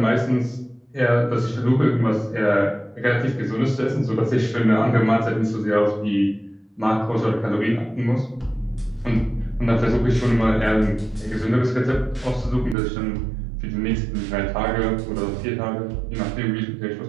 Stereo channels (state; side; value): drops out; left; at 12.8 s